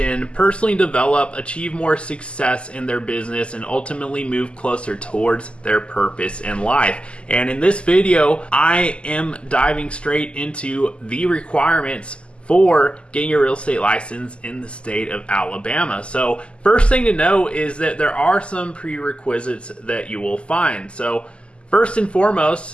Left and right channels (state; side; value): late; right; 0.053 ms